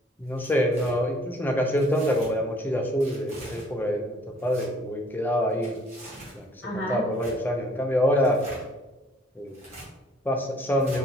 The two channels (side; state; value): both; normal; correlation 0.58